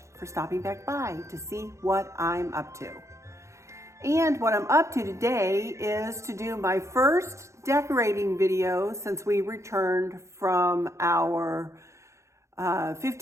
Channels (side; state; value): left; late; 0.14 ms